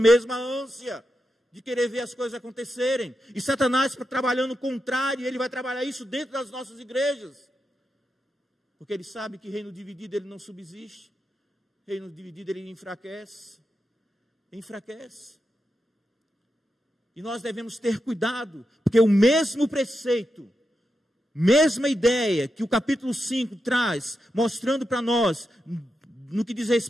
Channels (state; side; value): normal; both; correlation 0.87